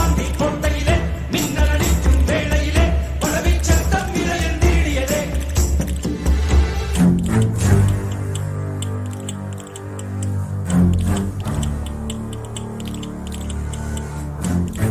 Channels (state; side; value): identical; both; correlation 1.00